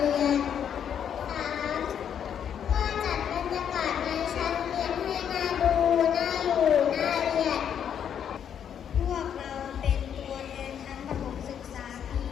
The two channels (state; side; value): quieter; right; 8.6 dB